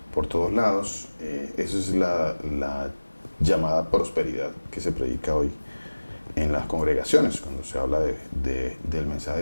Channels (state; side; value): inverted; both; correlation -1.00